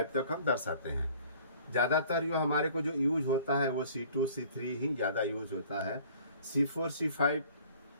तक हम दर्शाते हैं। ज़्यादातर जो हमारे को जो यूज होता है वो C2, C3 ही ज़्यादा यूज होता है। C4, C5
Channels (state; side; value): inverted; both; correlation -0.52